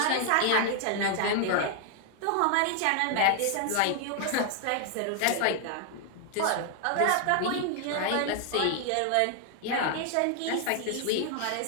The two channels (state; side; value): different; both; correlation 0.00